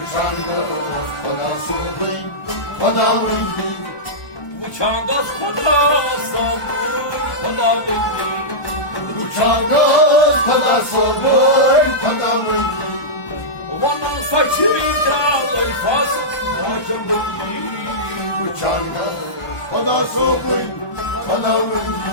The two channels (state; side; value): late; right; 1.2 ms